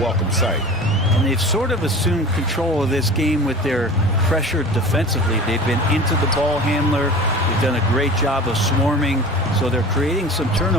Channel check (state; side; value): normal; both; correlation 0.37